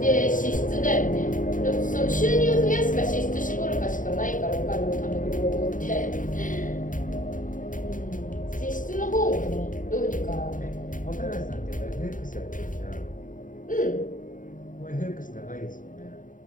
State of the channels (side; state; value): right; late; 0.38 ms